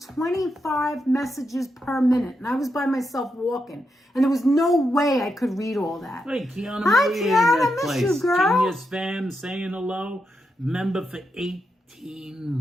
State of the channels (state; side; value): normal; both; correlation 0.85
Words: 25 messages per minute, and I was by myself walking, and there was no way I could read all that. Hey, Kiana Hi, Maria Kiana, in that miss place. you, girl. Genius fam saying hello. Member for 18